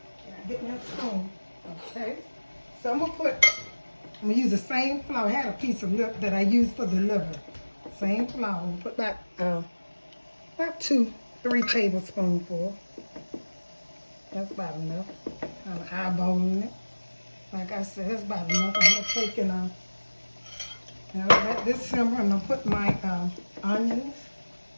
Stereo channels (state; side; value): inverted; both; correlation -1.00